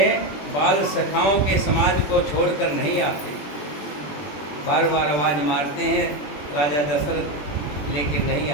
बाल सखाओं के समाज को छोड़कर नहीं आते। बार बार आवाज़ मारते हैं राजा दशरथ, लेकिन नहीं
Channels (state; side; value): late; right; 20 ms